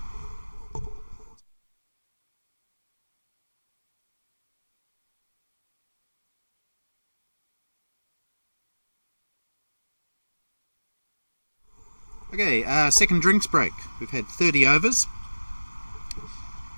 Okay, second drinks break. We've had 30 overs.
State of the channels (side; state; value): both; inverted; correlation -1.00